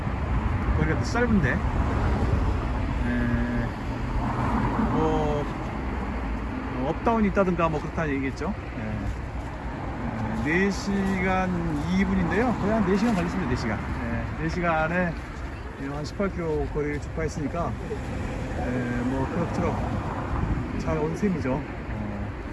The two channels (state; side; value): identical; both; correlation 1.00